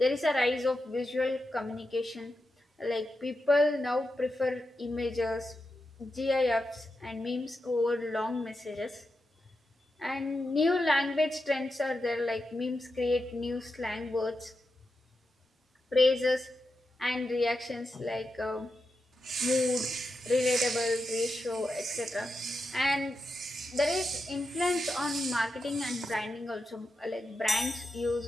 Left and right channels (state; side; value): normal; both; correlation 0.88